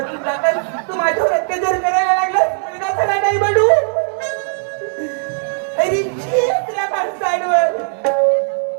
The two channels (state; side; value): silent; left; digital silence